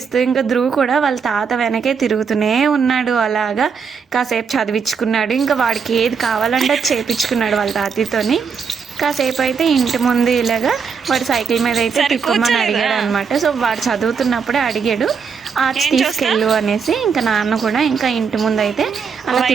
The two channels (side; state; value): left; quieter; 6.0 dB